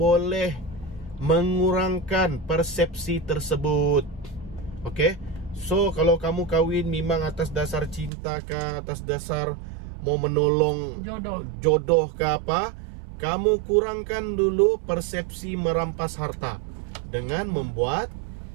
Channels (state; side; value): drops out; left; at 8.1 s